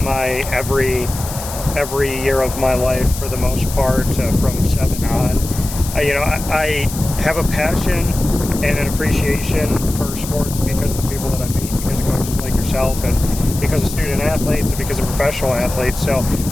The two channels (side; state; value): left; noise; hiss, 10 dB below the sound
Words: my every year of my life for the most part, from 7 on. I have a passion and an appreciation for sports because of the people that I meet, because of coaches like yourself, and because of student athletes, and because of professional athletes. So